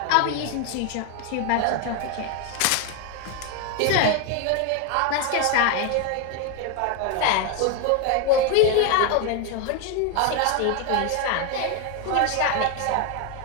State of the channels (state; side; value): different; both; correlation 0.01